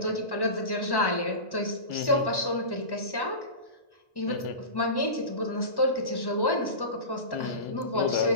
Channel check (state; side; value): late; right; 1.1 ms